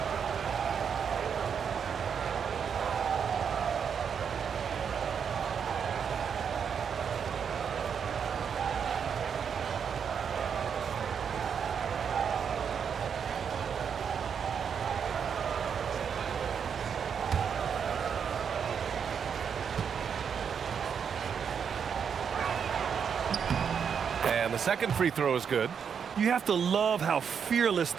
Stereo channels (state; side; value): quieter; left; 7.1 dB